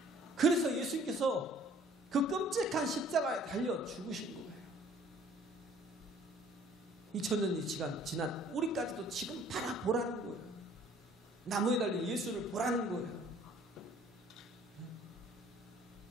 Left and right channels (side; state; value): both; normal; correlation 0.56